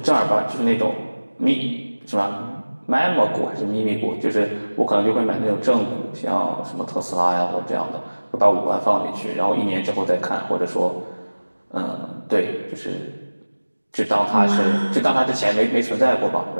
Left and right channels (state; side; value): inverted; both; correlation -1.00